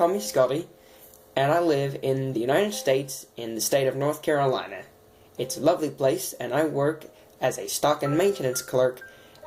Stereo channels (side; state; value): both; identical; correlation 1.00